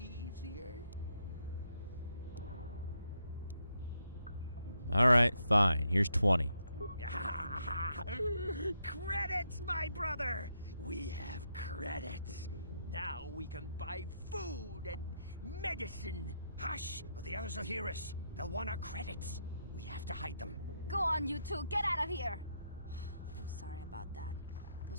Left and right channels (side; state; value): both; inverted; correlation -0.78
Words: easier. Alright, fine. Here's 20. Credits, my brother! We have credits. Now we can buy food and medicine. Hush, or the others will hear us. They'll want our credits. We have to hide them. Go on, you two. Get out of here. I'm sorry about that.